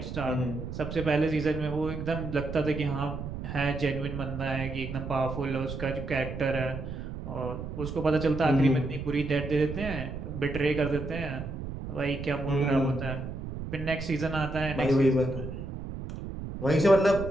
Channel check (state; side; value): noise; right; rumble, 7 dB below the sound